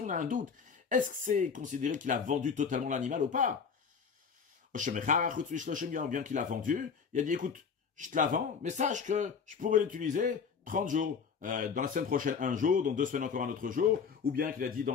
a un doute. Est-ce que c'est considéré qu'il a vendu totalement l'animal ou pas? Bien qu'il a vendu, il a dit, écoute, je te la vends, mais sache que je pourrais l'utiliser 30 jours. Dans la semaine prochaine, un jour, dans 2 semaines encore un autre jour, ou bien qu'il a dit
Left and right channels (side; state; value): right; quieter; 6.1 dB